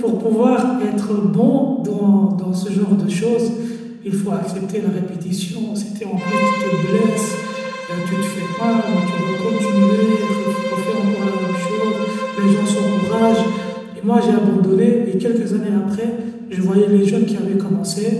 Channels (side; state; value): both; identical; correlation 1.00